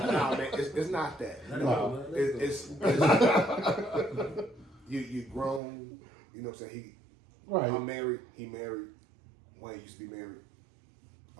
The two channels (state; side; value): drops out; left; at 5.6 s